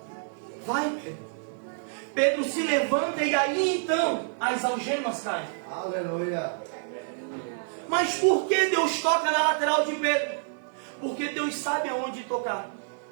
vai Pedro. Pedro se levanta e aí então as algemas caem. Aleluia. Mas por que Deus toca na lateral de Pedro? Porque Deus sabe aonde tocar.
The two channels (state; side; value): silent; left; 57 dB below the other